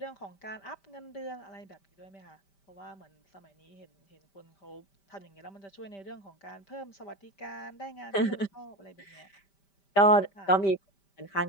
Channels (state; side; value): late; right; 5.1 ms